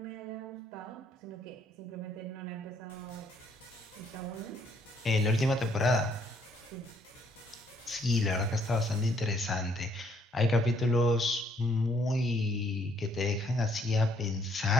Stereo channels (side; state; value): both; normal; correlation 0.67